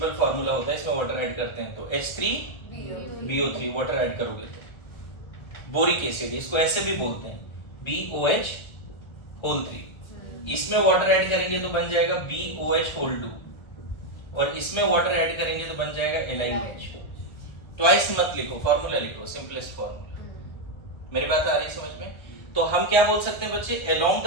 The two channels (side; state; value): right; late; 1.3 ms